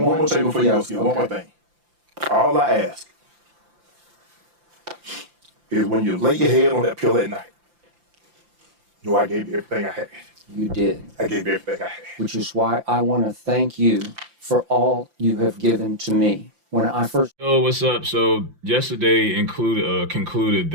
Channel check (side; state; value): left; late; 5.8 ms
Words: thing before you go, Skip. One more thing. All I ask is when you lay your head on that pillow at night, know I gave you everything I had. You did. I gave you everything I had. Which is why I want to thank you for all you have given to me. When I first... Yo, what's up? So yesterday concluded